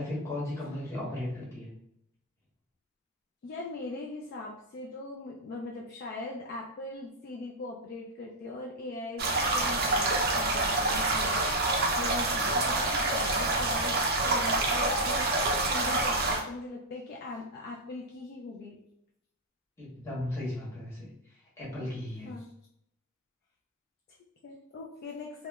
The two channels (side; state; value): both; normal; correlation -0.04